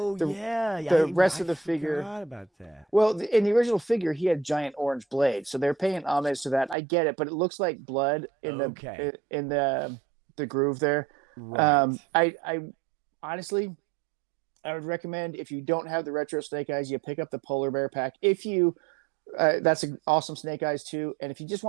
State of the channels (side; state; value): left; drops out; at 6.8 s